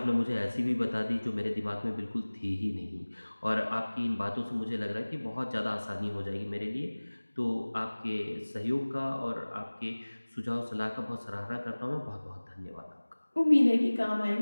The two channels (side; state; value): both; inverted; correlation -1.00